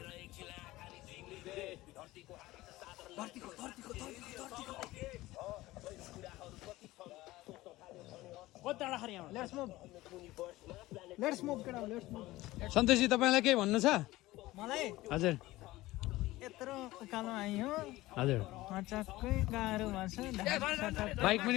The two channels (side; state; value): right; quieter; 18.1 dB